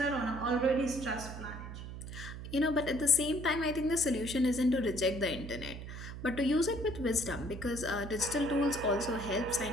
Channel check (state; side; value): noise; right; hum, 9 dB below the sound